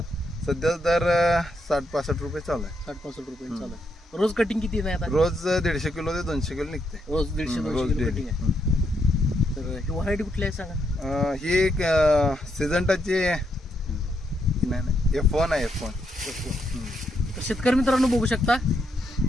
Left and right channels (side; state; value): both; normal; correlation 0.78